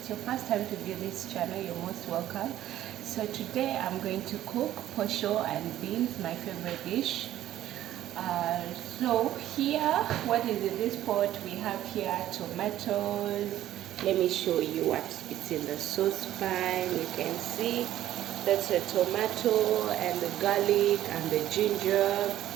your first time to view this channel, you're most welcome. So today I'm going to cook posho and beans, my favorite dish. So here, what is in this pot? We have here tomatoes. Let me show you what it's in the saucepan. You can see that's a tomato and the garlic and the ginger.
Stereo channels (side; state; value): left; quieter; 13.0 dB